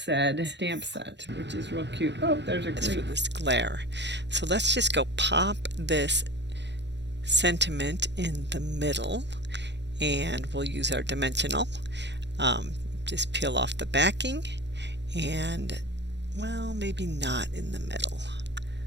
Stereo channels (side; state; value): left; late; 0.51 ms